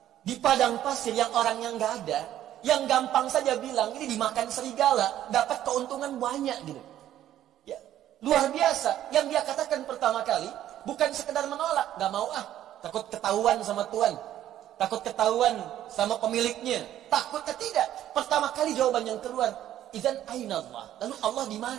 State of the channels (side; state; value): left; quieter; 12.1 dB